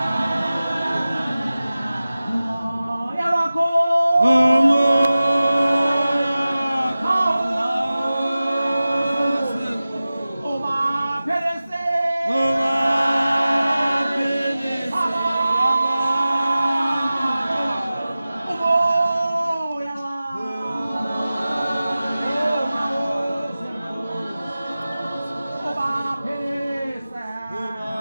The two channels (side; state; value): both; inverted; correlation -0.96